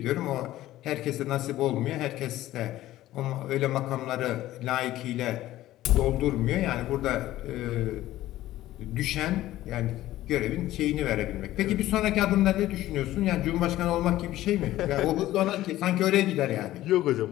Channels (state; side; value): quieter; right; 15.0 dB